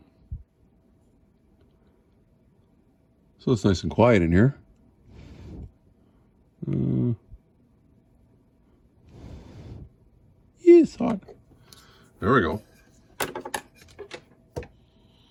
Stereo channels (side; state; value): both; identical; correlation 1.00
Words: So it's nice and quiet in here. It's hot. There we go.